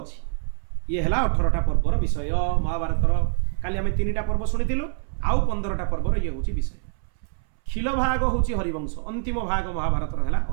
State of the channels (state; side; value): silent; left; 62 dB below the other